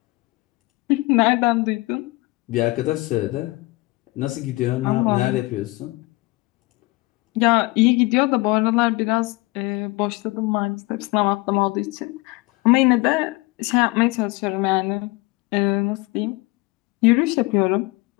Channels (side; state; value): right; quieter; 23.0 dB